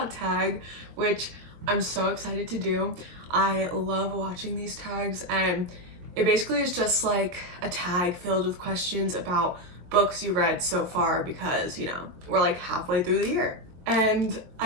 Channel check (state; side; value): late; left; 22 ms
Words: tag, which I'm so excited to do. I love watching these tags, and it basically is just like a tag filled with questions about books you read so far because, you know, we're like halfway through the year. And